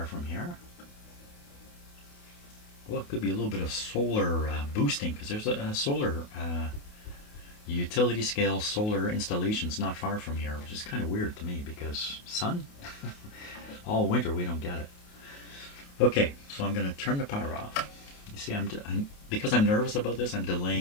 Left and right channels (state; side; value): late; right; 28 ms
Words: from here. Well, it could be a little bit of solar boosting, because there's a solar utility scale solar installations not far from here, which is kind of weird to me because sun? All winter we don't get it. Okay, so I'm going to turn the power off. You see, because I'm nervous about this, I'm